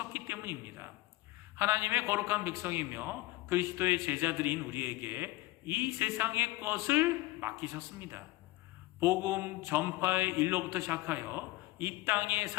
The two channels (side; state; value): right; quieter; 19.0 dB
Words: 때문입니다. 하나님의 거룩한 백성이며 그리스도의 제자들인 우리에게 이 세상의 것을 맡기셨습니다. 복음 전파의 일로부터 시작하여 이 땅에